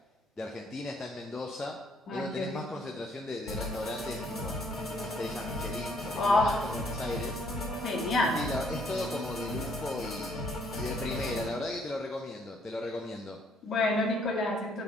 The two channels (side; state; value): both; normal; correlation 0.66